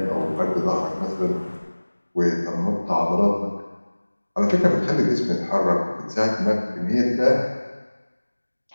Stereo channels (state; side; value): inverted; both; correlation -1.00